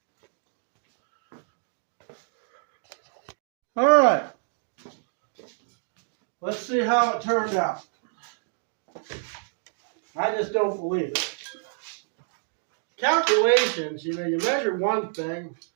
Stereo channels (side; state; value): left; silent; digital silence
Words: All right. Let's see how it turned out. I just don't believe it. Calculations, you know, you measure one thing,